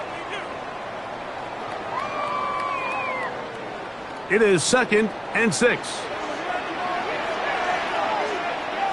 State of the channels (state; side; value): identical; both; correlation 1.00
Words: It is 2nd and 6.